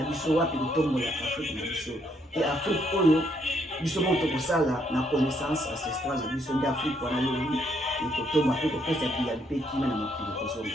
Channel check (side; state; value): both; normal; correlation 0.72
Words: biso wapi kotombola Afrique na biso et Afrique oyo biso mo tokosala na connaissance ancestrale na biso nde Afrique wana lobi ekotomba pe kopesa biyali pe kima na mokili